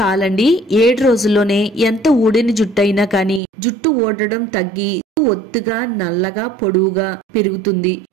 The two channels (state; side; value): drops out; left; at 3.4 s